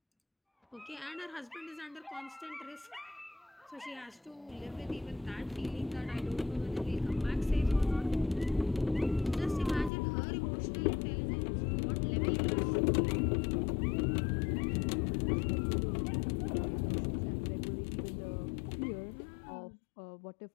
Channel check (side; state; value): right; drops out; at 9.9 s